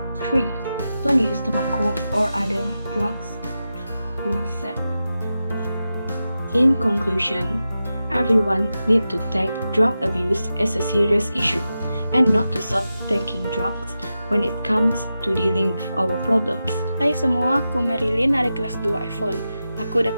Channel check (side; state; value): both; inverted; correlation -0.91